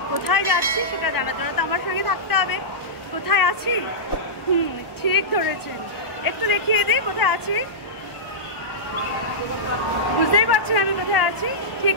কোথায় যাচ্ছি সেটা জানার জন্য তো আমার সঙ্গে থাকতে হবে। কোথায় আছি? ঠিক ধরেছেন, একটু দেখিয়ে দিই কোথায় আছি। বুঝতেই পারছেন আমি কোথায় আছি? ঠিক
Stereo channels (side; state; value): right; late; 1.1 ms